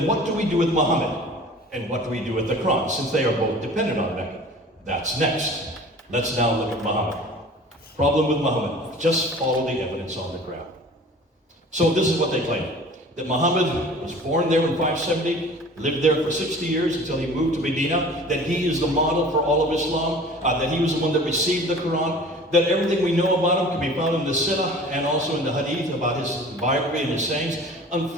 what do we do with Muhammad? And what do we do with the Quran, since they are both dependent on Mecca? That's next. Let's now look at Muhammad. Problem with Muhammad, just follow the evidence on the ground. So this is what they claim. That Muhammad was born there in 570, lived there for 60 years until he moved to Medina, that he is the model for all of Islam, that he was the one that received the Quran, that everything we know about him can be found in the Sirah and also in the Hadith about his biography and his sayings.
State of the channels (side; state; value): both; normal; correlation 0.44